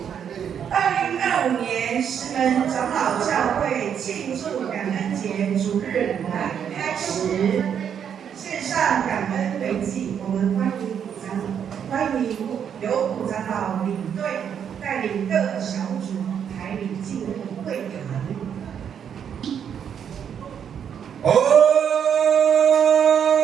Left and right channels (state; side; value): quieter; left; 8.2 dB